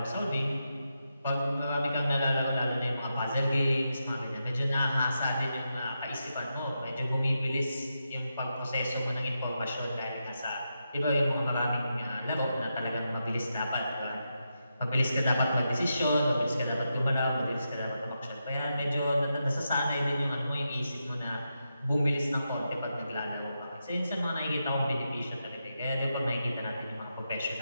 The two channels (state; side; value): inverted; both; correlation -0.86